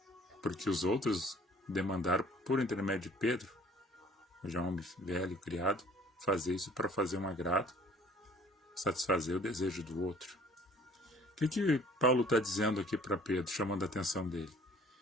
porque os outros demandaram, por intermédio de Pedro, já um homem velho, criado, fazer isso para fazer um agrado, satisfazer o desejo do outro. O que Paulo está dizendo aqui para Pedro, chamando a atenção dele?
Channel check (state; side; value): normal; both; correlation 0.53